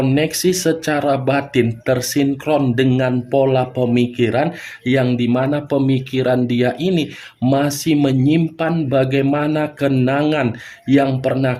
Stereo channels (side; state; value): both; identical; correlation 1.00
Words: secara batin tersinkron dengan pola pemikiran yang dimana pemikiran dia ini masih menyimpan bagaimana kenangan yang